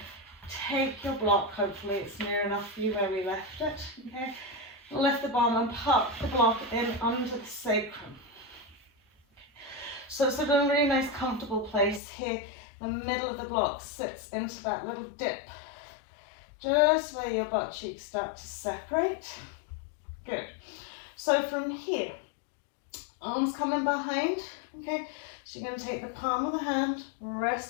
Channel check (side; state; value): right; drops out; at 12.0 s